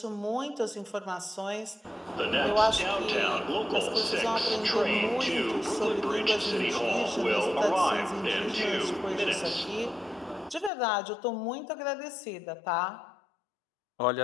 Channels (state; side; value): drops out; right; at 10.7 s